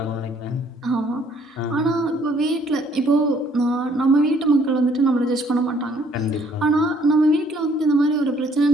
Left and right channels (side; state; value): both; normal; correlation 0.63